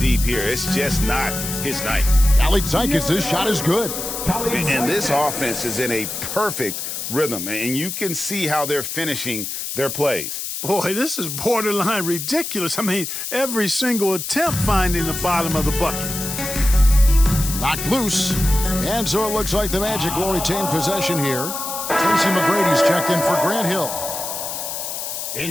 deep here. It's just not his night. Alexakis' shot is good. And this offense is in a perfect rhythm, and you can see how they're finishing their plays. Boy, this is borderline ridiculous. I mean, every single attempt finding the bottom of the bucket. Knocked loose. And so it looks like the Magic will retain possession here. Tracy McGrady's checked in for Grant Hill.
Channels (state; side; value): noise; left; hiss, 5 dB below the sound